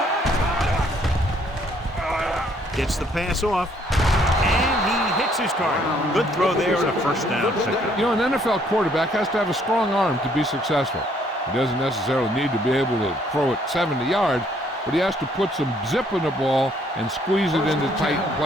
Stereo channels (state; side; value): normal; both; correlation 0.66